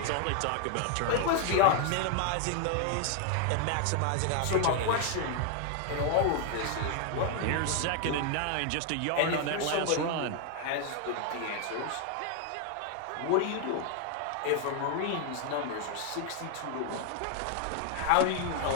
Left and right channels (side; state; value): both; different; correlation 0.00